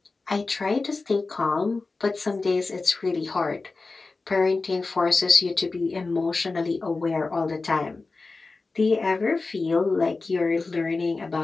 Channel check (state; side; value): quieter; right; 3.8 dB